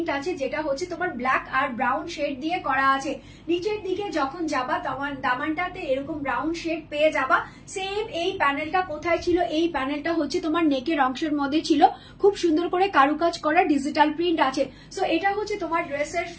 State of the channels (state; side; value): identical; both; correlation 1.00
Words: আছে, যেটা হচ্ছে তোমার ব্ল্যাক আর ব্রাউন শেড দিয়ে করা আছে। নিচের দিকে যখন যাবা তোমার দামানটাতে এরকম ব্রাউন শেড পেয়ে যাবা। সেম এই প্যানেলটা কোথায় ছিল, এই প্যানেলটা হচ্ছে তোমার নেকের অংশের মধ্যে ছিল, খুব সুন্দর করে কারুকাজ করা ডিজিটাল প্রিন্ট আছে। সো এটা হচ্ছে তোমার ড্রেসের